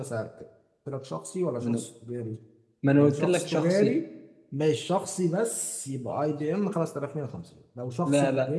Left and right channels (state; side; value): identical; both; correlation 1.00